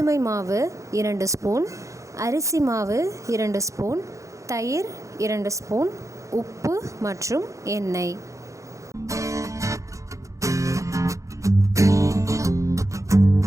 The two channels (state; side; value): late; left; 0.15 ms